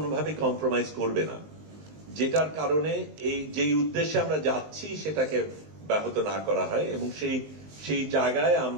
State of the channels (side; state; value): left; late; 19 ms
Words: কম্প্রোমাইজ করবে না, যেটার কারণে এই যেই উদ্দেশ্যে আমরা যাচ্ছি সেটাকে ব্যাহত না করা হয়। এবং সেই জায়গায়